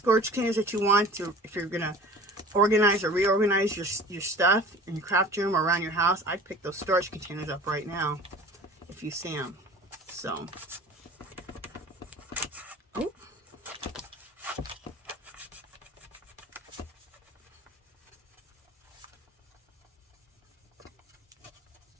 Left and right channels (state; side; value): normal; both; correlation 0.42